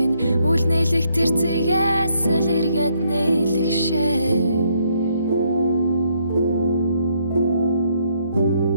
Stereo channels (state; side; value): inverted; both; correlation -0.72